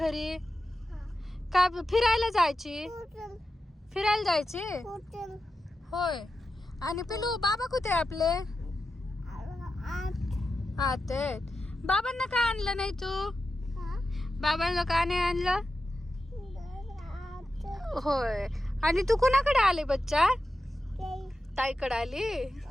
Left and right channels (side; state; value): both; normal; correlation 0.91